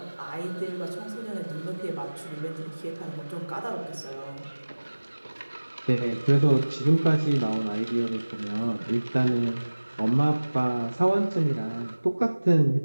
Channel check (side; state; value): both; inverted; correlation -1.00